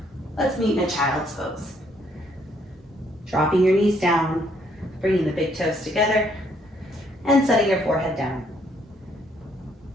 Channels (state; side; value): normal; both; correlation 0.68